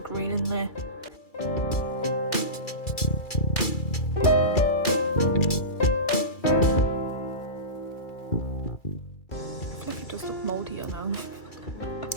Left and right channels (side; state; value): right; late; 2.3 ms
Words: green in there.